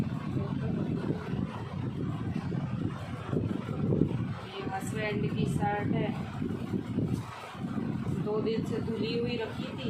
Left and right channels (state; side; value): identical; both; correlation 1.00